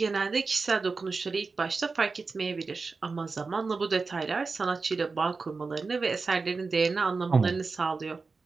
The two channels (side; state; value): left; quieter; 4.3 dB